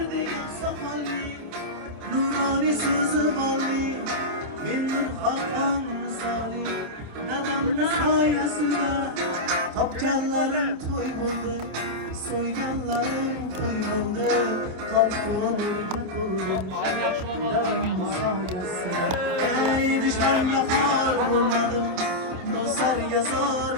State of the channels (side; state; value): left; late; 27 ms